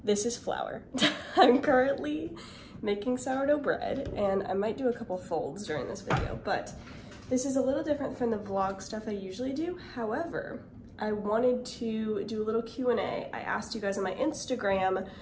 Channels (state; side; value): identical; both; correlation 1.00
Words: This is Flour. I'm currently making sourdough bread, and I might do a couple folds during this video, but this is a little different from the vlog stuff I usually do. However, I wanted to do a little Q&A. I asked you guys on my Instagram